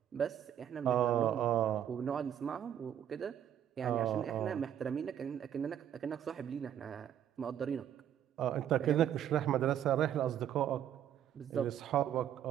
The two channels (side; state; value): left; quieter; 10.0 dB